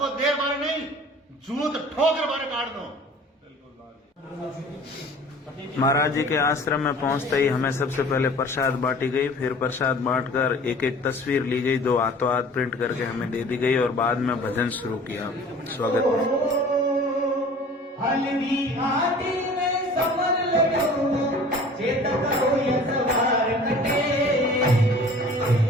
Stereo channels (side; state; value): both; normal; correlation 0.46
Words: देर बारे नहीं, जूत ठोकर बारे काट दो। महाराज जी के आश्रम में पहुंचते ही हमें सबसे पहले प्रसाद बांटी गई, फिर प्रसाद बांटकर एक एक तस्वीर ली गई, 2 हाथों हाथ प्रिंट करके हमें दे दी गई और बाद में भजन शुरू किया। स्वागत